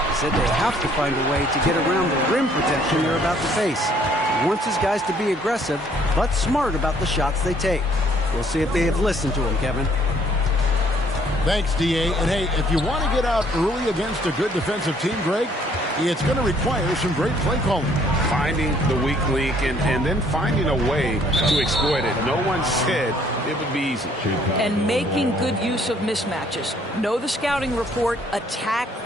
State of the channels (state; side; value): normal; both; correlation 0.63